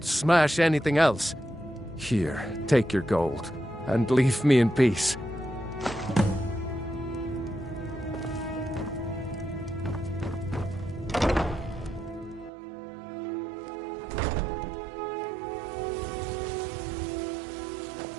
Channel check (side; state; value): left; drops out; at 12.5 s